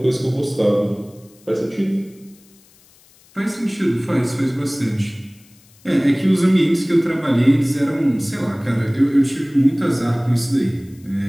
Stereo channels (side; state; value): left; noise; hiss, 29 dB below the sound